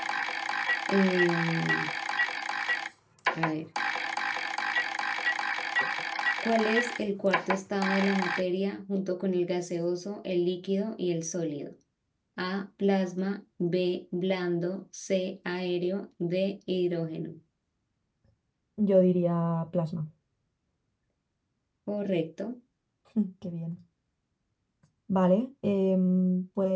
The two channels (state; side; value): identical; both; correlation 1.00